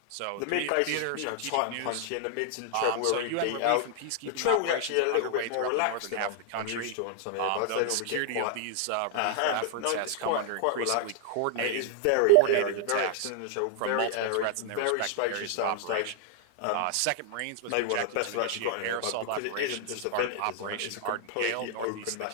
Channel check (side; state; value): both; different; correlation 0.00